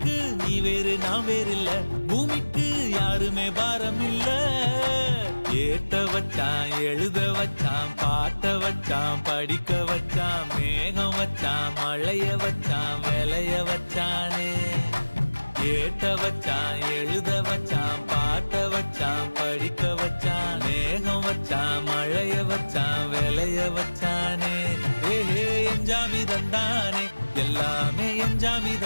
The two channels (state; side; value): inverted; both; correlation -1.00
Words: நீ வேறு நான் வேறு இல்ல பூமிக்கு யாருமே பாரம் இல்ல ஏத்த வச்சான் எழுத வச்சான் பாட்ட வச்சான் படிக்க வச்சான் மேகம் வச்சான் மழைய வச்சான் விளைய வச்சானே ஏத்த வச்சான் எழுத வச்சான் பாட்ட வச்சான் படிக்க வச்சான் மேகம் வச்சான் மழைய வச்சான் விளைய வச்சானே ஏஹே எஞ்சாமி தந்தானே எல்லாமே எஞ்சாமி